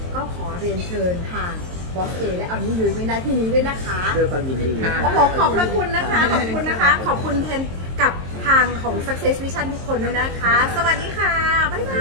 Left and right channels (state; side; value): late; left; 22 ms